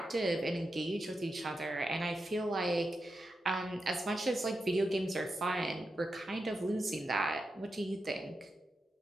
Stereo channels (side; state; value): both; normal; correlation 0.88